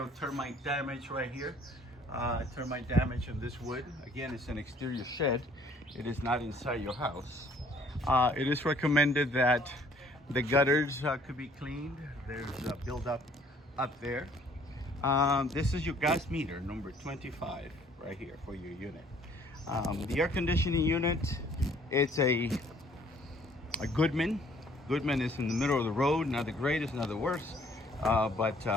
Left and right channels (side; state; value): both; normal; correlation 0.59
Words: termite damage right here. Termite damage on this wood. Again, it's an exterior shed. It is not inside your house. It is recommended that the gutters could be cleaned. There's a buildup up there. This is your gas meter, number 25, right here for your unit. The air conditioning unit, it's a Goodman. Goodman is in the middle of the road, not the greatest, not the worst.